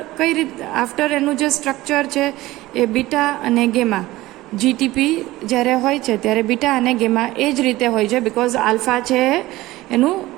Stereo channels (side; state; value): left; quieter; 17.8 dB